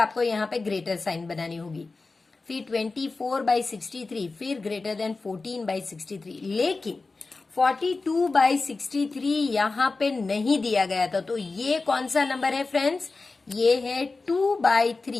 यहाँ पे ग्रेटर साइन बनानी होगी, फिर 24/63, फिर ग्रेटर देन 14/63, लेकिन 42/63 यहाँ पे नहीं दिया गया था, तो ये कौन सा नंबर है फ्रेंड्स, ये है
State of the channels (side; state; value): right; quieter; 3.8 dB